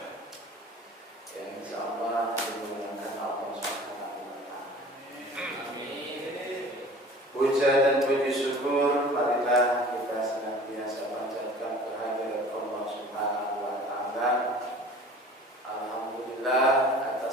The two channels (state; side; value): normal; both; correlation 0.44